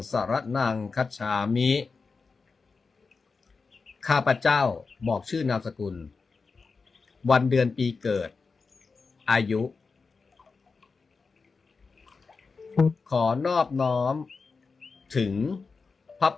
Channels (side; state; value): right; quieter; 4.6 dB